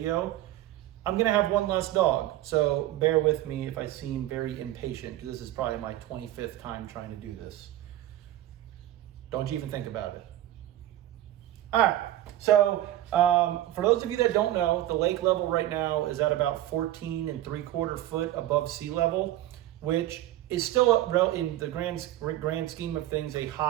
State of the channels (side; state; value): left; quieter; 14.0 dB